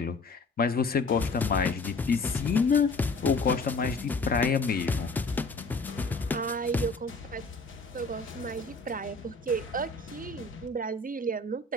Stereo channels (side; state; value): right; quieter; 3.4 dB